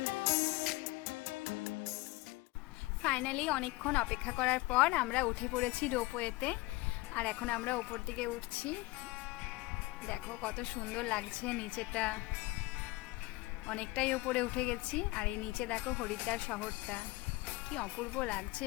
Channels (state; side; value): quieter; right; 21.5 dB